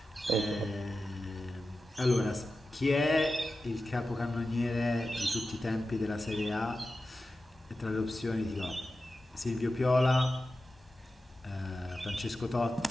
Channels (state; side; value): normal; both; correlation 0.93